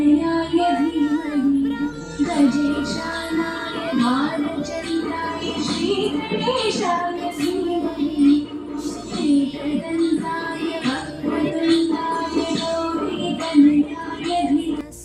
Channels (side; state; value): both; identical; correlation 1.00